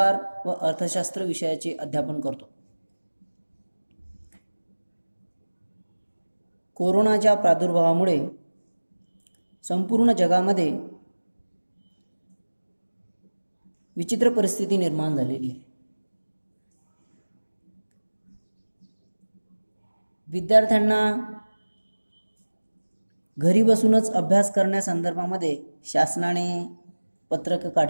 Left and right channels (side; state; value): both; inverted; correlation -1.00